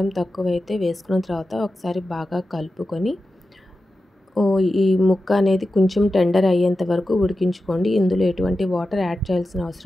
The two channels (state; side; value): normal; both; correlation 0.92